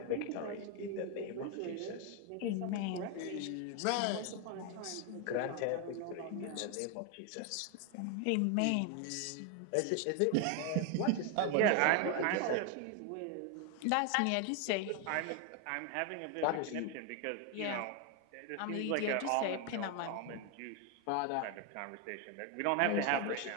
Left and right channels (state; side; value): different; both; correlation 0.01